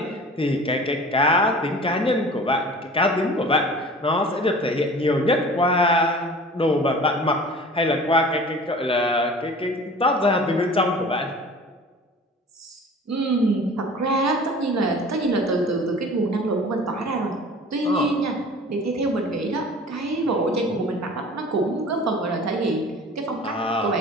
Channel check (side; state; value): both; normal; correlation 0.43